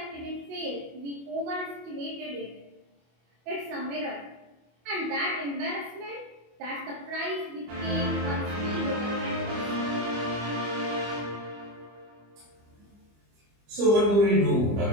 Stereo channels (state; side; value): late; left; 25 ms